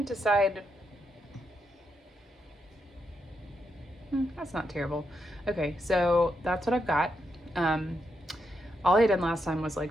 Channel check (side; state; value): both; normal; correlation 0.82